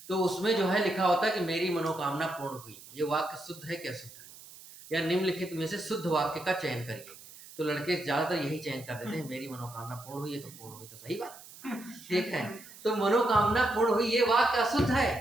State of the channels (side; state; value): right; noise; hiss, 18 dB below the sound